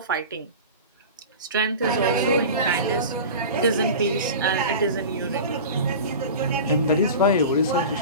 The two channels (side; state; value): both; inverted; correlation -0.33